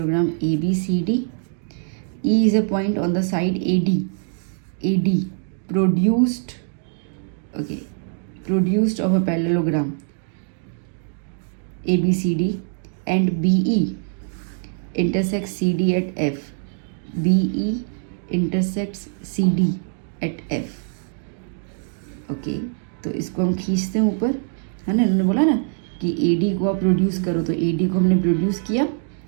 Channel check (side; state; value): left; silent; 60 dB below the other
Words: ABCD. E is a point on the side AD produced of a parallelogram ABCD and BE intersects CD at F. BE intersects CD at F. Okay, तो इसको हम खींचते हैं ऊपर, है ना। इन्होंने बोला ना कि AD को आप प्रोड्यूस करो, तो AD को हमने प्रोड्यूस किया